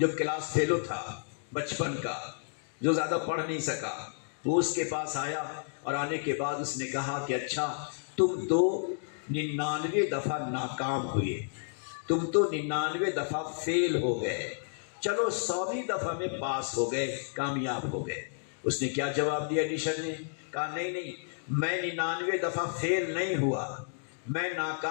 کلاس فیلو تھا بچپن کا، جو زیادہ پڑھ نہیں سکا، وہ اس کے پاس آیا اور آنے کے بعد اس نے کہا کہ اچھا تم تو 99 دفعہ ناکام ہوئے، تم تو 99 دفعہ فیل ہو گئے، چلو 100ویں دفعہ میں پاس ہو گئے، کامیاب ہو گئے۔ اس نے کیا جواب دیا؟ ایڈیشن نے کہا نہیں، میں 99 دفعہ فیل نہیں ہوا، میں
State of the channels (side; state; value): right; silent; digital silence